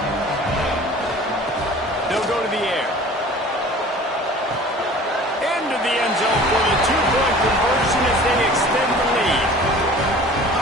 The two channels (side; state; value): both; normal; correlation 0.45